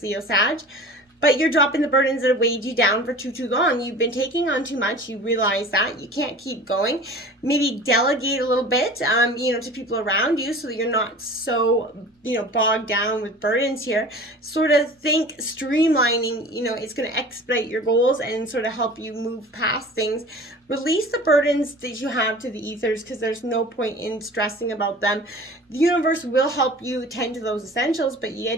Leo, Sag. But you're dropping the burdens that have weighed you down for too long. You've been taking on too much. You realize that. You can't keep going. Maybe delegate a little bit, to people around you so that you're not so, bogged down with burdens here. Sort of think streamlining, it's going to expedite your goals and sort of help you move past things. Release the burdens that you have to the ethers because there's no point in stressing about them. The universe will help you tend to those essentials, but you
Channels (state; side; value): normal; both; correlation 0.40